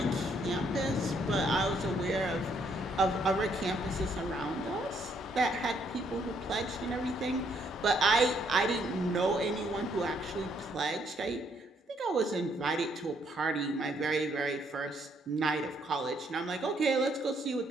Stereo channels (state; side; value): normal; both; correlation 0.70